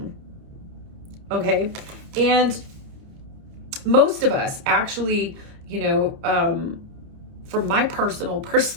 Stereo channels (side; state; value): left; late; 29 ms